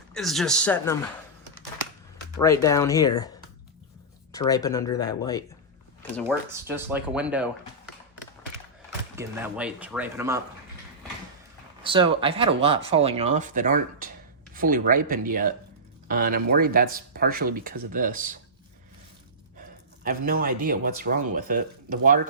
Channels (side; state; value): both; normal; correlation -0.16